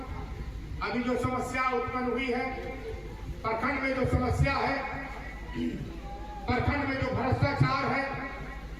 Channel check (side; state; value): both; identical; correlation 1.00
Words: अभी जो समस्या उत्पन्न हुई है प्रखंड में, जो समस्या है प्रखंड में, जो भ्रष्टाचार है,